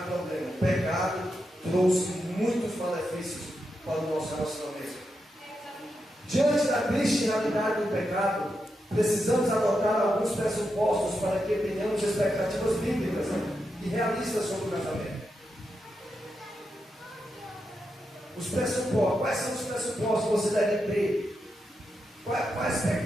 problema. O pecado trouxe muitos malefícios para o nosso relacionamento. Diante da triste realidade do pecado, precisamos adotar alguns pressupostos para que tenhamos expectativas bíblicas e realistas sobre o casamento. Os pressupostos, quais são os pressupostos que você deve ter? Qual a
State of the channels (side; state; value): both; normal; correlation 0.86